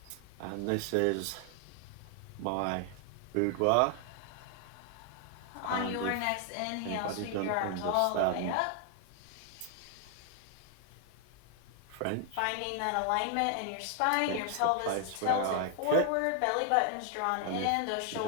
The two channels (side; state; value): both; different; correlation 0.00